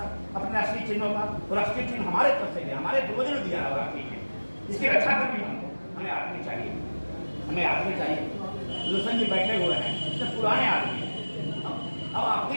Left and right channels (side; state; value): both; inverted; correlation -1.00